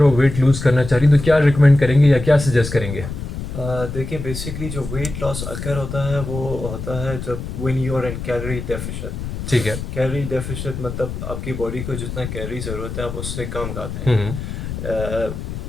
वो वेट लूज़ करना चाह रही, तो क्या रिकमेंड करेंगे या क्या सजेस्ट करेंगे? देखिए बेसिकली जो वेट लॉस अकर होता है वो होता है जब when you are in calorie deficit. ठीक है। कैलोरी डेफिशिएट मतलब आपकी बॉडी को जितना कैलोरी ज़रूरत है आप उससे कम खाते हम्म। हैं।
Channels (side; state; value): left; noise; rumble, 7 dB below the sound